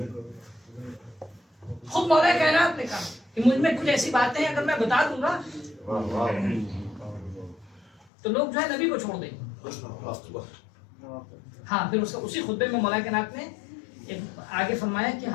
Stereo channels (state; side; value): drops out; right; at 8.1 s